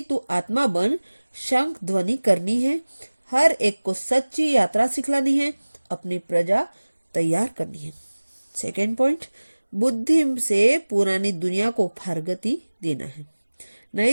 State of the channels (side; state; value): both; inverted; correlation -1.00